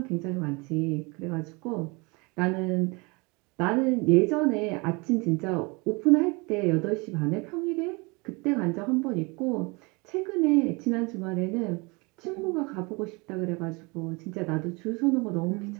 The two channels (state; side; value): quieter; left; 27.8 dB